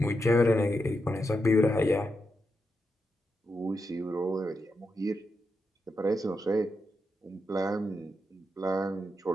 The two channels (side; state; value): both; normal; correlation 0.85